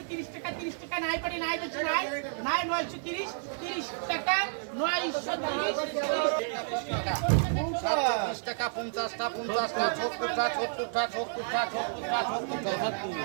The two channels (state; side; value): silent; left; 57 dB below the other